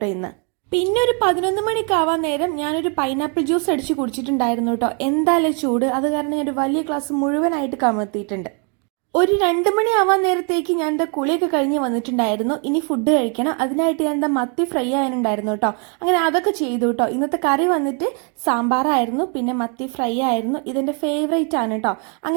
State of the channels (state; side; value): quieter; left; 37.7 dB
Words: ഇന്ന്. പിന്നെ ഒരു 11 മണിക്കാവാൻ നേരം ഞാനൊരു പൈനാപ്പിൾ ജ്യൂസ് അടിച്ച് കുടിച്ചിട്ടുണ്ടായിരുന്നു കേട്ടോ. എന്തായാലും ചൂട്, അത് കാരണം ഞാനൊരു വലിയ ഗ്ലാസ് മുഴുവനായിട്ട് കമഴ്ത്തിയിട്ടുണ്ട്. ഒരു 2 മണിയാവാൻ നേരത്തേക്ക് ഞാൻ എന്താ കുളിയൊക്കെ കഴിഞ്ഞ് വന്നിട്ടുണ്ടായിരുന്നു. ഇനി ഫുഡ് കഴിക്കണം. അതിനായിട്ട് ഞാൻ എന്താ മത്തി ഫ്രൈ ആയാനുണ്ടായിരുന്നു കേട്ടോ. അങ്ങനെ അതൊക്കെ ചെയ്തു കേട്ടോ. ഇന്നത്തെ കറി വന്നിട്ട് സാമ്പാറായിരുന്നു, പിന്നെ മത്തി ഫ്രൈ ആയിരുന്നു. ഇതെന്റെ ഫേവറേറ്റ് ആണ് കേട്ടോ.